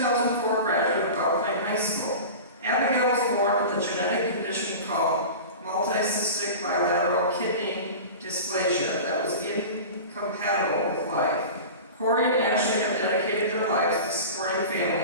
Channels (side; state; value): both; inverted; correlation -0.32